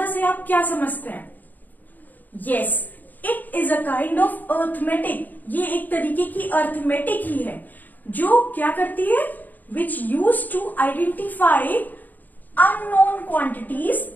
से आप क्या समझते हैं? Yes, it is a kind of arithmetic. ये एक तरीके की arithmetic ही है जो क्या करती है? Which used to identify unknown quantities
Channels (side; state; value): right; late; 0.085 ms